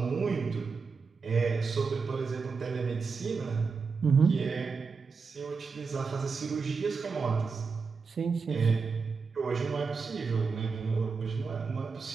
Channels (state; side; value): quieter; left; 5.0 dB